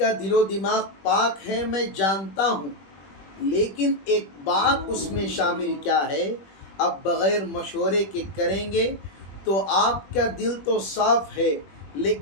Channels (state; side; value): late; right; 21 ms